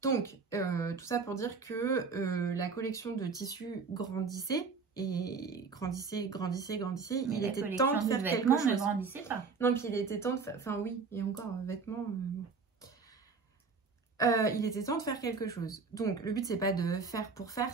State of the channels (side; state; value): left; quieter; 4.9 dB